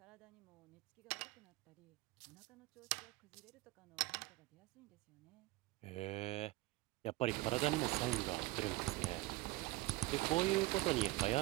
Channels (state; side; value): quieter; left; 19.1 dB